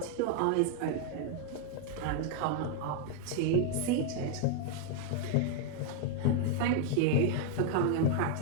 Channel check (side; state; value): both; different; correlation 0.00